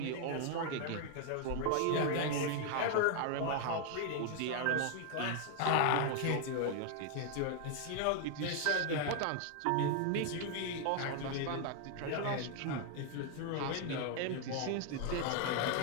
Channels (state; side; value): different; both; correlation 0.00